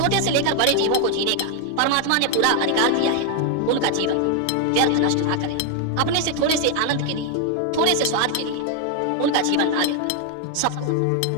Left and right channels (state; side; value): different; both; correlation 0.00